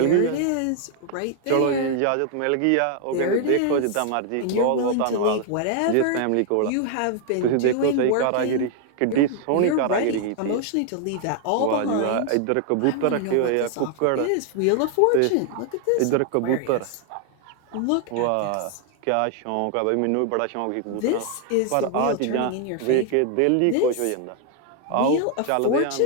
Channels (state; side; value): different; both; correlation 0.00